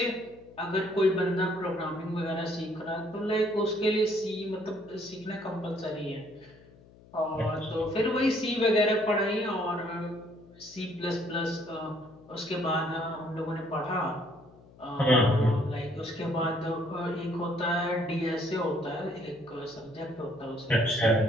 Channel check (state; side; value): noise; left; hum, 24 dB below the sound